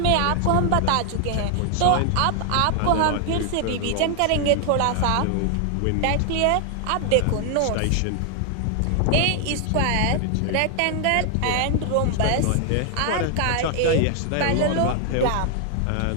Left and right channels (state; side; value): different; both; correlation 0.00